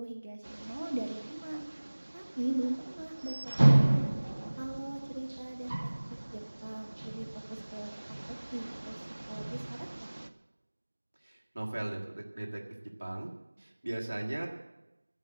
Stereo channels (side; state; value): both; inverted; correlation -1.00